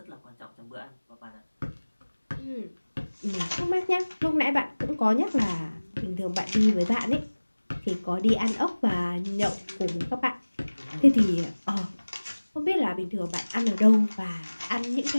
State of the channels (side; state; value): both; inverted; correlation -1.00